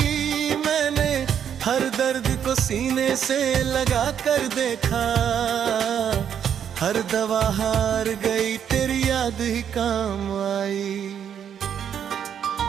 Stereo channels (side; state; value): left; quieter; 8.6 dB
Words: मैंने हर दर्द को सीने से लगा कर देखा, हर दवा हार गई तेरी याद ही काम आई।